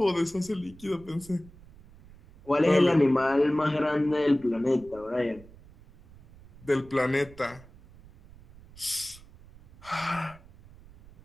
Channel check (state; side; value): noise; right; rumble, 23 dB below the sound